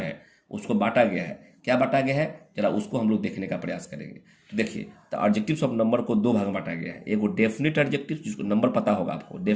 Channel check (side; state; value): both; identical; correlation 1.00